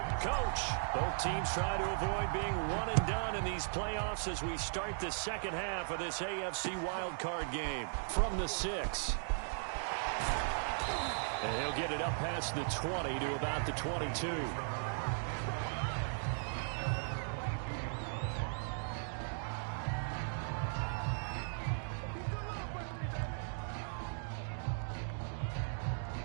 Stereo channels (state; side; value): silent; left; digital silence